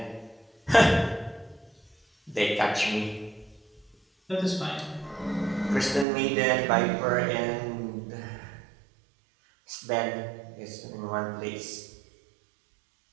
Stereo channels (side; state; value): left; drops out; at 6.1 s